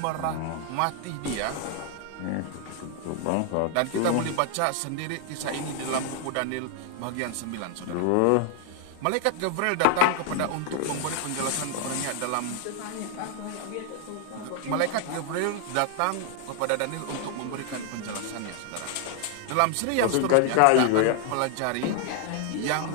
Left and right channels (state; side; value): different; both; correlation 0.00